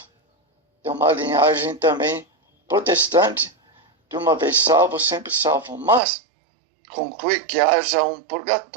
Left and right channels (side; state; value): left; drops out; at 6.0 s